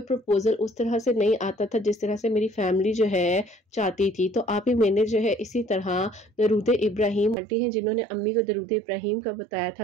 प्रपोजल उस तरह से नहीं आता था जिस तरह से मेरी फैमिली जो है चाहती थी। तो आप ही मैंने जो है इसी तरह दरूद इब्राहिम आंटी हैं जिन्होंने अम्मी को दरूद इब्राहिम का बताया था,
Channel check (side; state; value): left; drops out; at 7.4 s